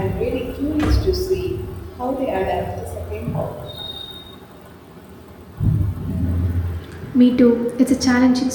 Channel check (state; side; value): identical; both; correlation 1.00